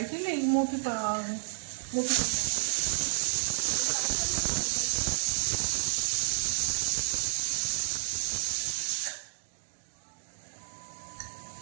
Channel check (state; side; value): silent; left; digital silence